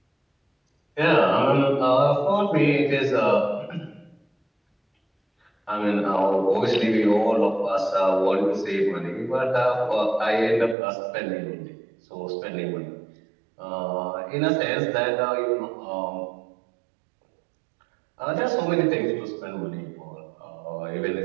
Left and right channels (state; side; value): drops out; left; at 10.8 s